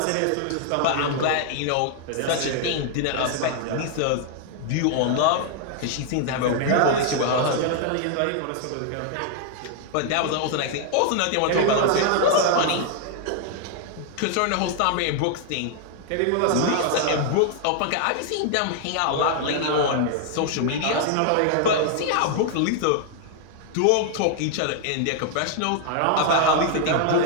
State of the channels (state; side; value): different; both; correlation 0.00